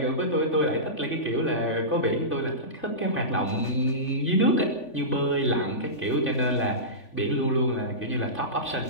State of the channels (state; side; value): late; right; 3.5 ms